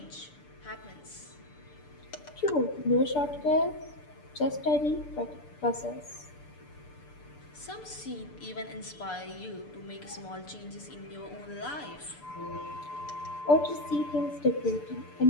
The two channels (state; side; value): late; right; 6.8 ms